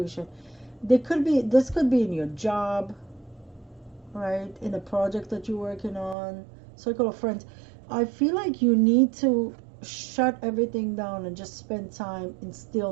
This could be in your job, right, in a project that you're working on, circle of friends. I feel like you need to shut everything down and just spend time in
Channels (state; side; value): drops out; left; at 6.2 s